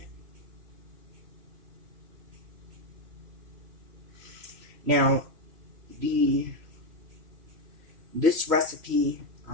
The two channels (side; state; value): left; late; 2.8 ms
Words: Now, this recipe,